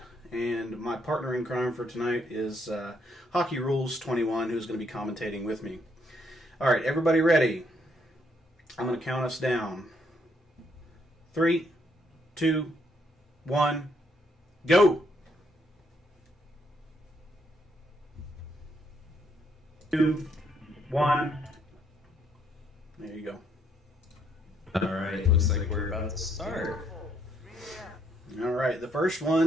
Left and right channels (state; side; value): normal; both; correlation 0.72